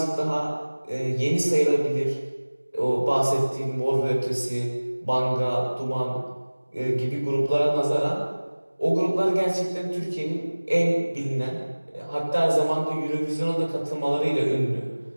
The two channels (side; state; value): both; inverted; correlation -1.00